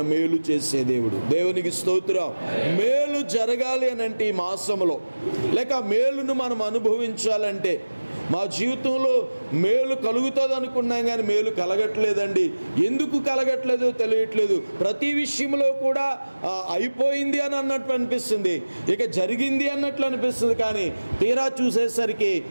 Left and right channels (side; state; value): both; inverted; correlation -1.00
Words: మేలు చేసే దేవుడు. దేవునికి స్తోత్రం. మేలు జరగాలి అని అంటే ఈ మాసంలో, లేక మేలును మనం అనుభవించాలంటే, మా జీవితంలో మేలు కలుగుతుంది అనుకున్నాం కానీ మేలు కలగట్లేదండి. ఎందుకు కలగట్లేదో తెలియట్లేదు. ప్రతి విషయంలో కూడా అయిపోయింది అని అన్నట్టు అనిపిస్తుంది, ఇక జరిగింది అన్నట్లు అనిపిస్తుంది. కానీ తీరా చూసేసరికి